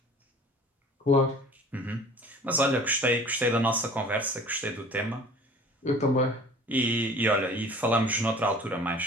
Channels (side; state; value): both; normal; correlation 0.46